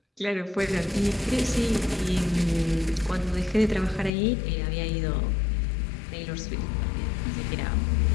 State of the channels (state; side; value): drops out; right; at 4.1 s